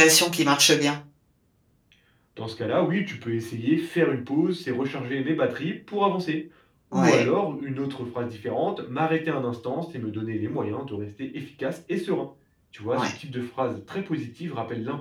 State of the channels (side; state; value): both; identical; correlation 1.00